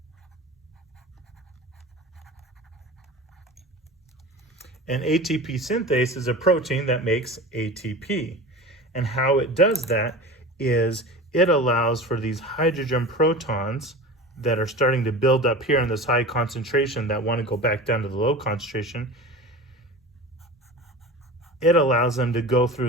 And ATP synthase is a protein that makes ATP. And how it does that is it allows for these hydrogen protons that are starting to build up here in this high concentration that want to go back down to the low concentration. It allows them to go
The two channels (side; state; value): both; normal; correlation 0.34